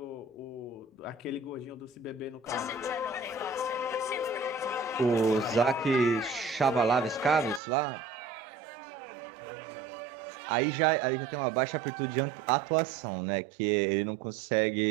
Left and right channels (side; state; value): left; drops out; at 7.6 s